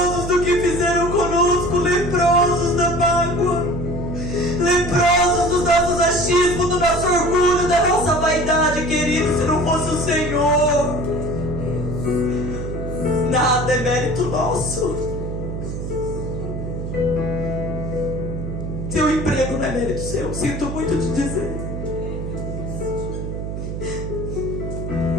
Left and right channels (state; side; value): noise; right; hum, 5 dB below the sound